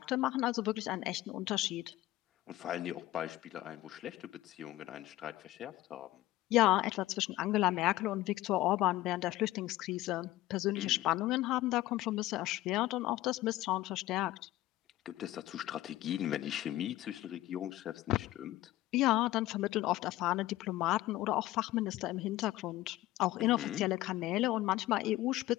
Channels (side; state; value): right; quieter; 16.2 dB